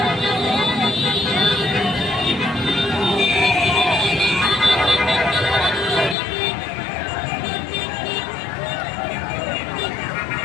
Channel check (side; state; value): right; drops out; at 6.2 s